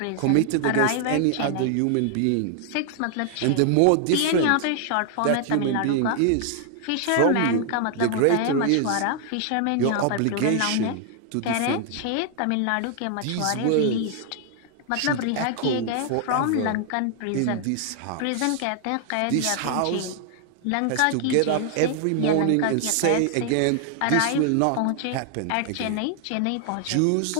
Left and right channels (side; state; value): both; different; correlation 0.00